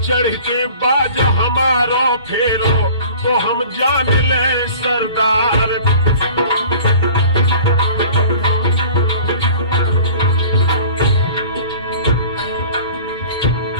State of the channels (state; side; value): inverted; both; correlation -0.45